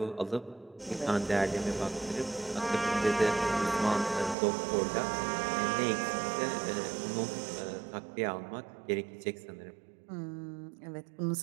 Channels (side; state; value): left; drops out; at 4.4 s